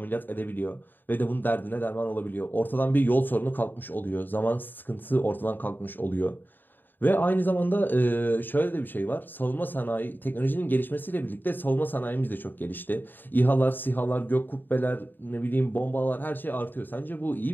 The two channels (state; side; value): late; right; 0.092 ms